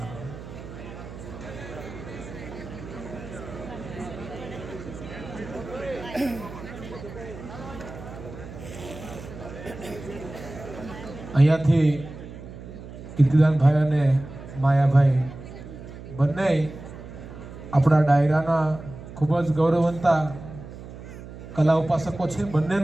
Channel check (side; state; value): right; noise; hum, 13 dB below the sound